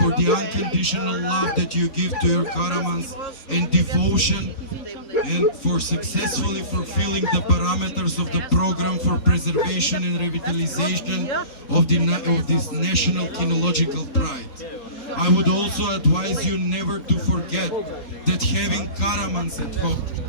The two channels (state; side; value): late; right; 3.9 ms